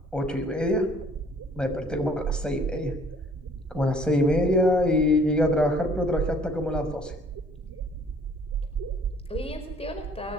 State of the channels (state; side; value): normal; both; correlation 0.57